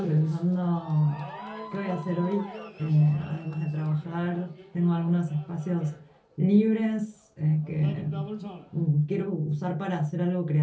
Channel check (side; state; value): both; identical; correlation 1.00